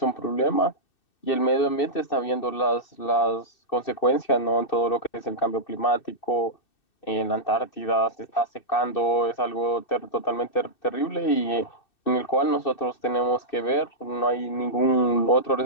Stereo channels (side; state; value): right; late; 2.6 ms